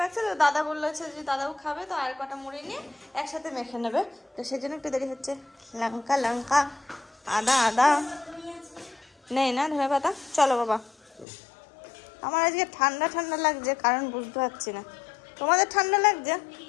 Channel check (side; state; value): right; drops out; at 11.2 s